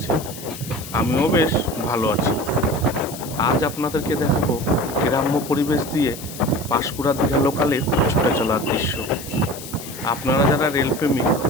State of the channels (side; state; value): left; noise; hiss, 13 dB below the sound